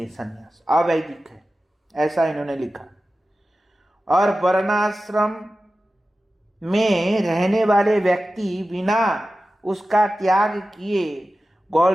संन्यास अवैदिक है, ऐसा इन्होंने लिखा। और वर्णाश्रम में रहने वाले व्यक्ति बिना उसका त्याग किए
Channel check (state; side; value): normal; both; correlation 0.94